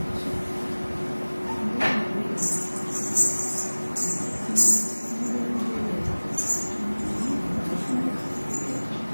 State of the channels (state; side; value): inverted; both; correlation -1.00